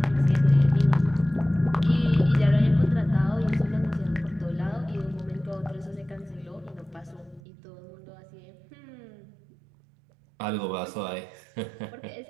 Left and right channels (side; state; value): left; drops out; at 7.4 s